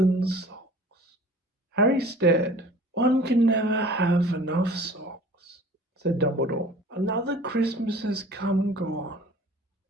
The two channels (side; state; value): both; normal; correlation 0.46